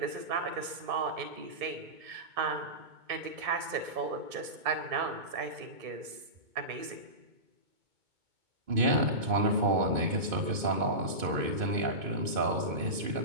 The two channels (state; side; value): late; left; 2.2 ms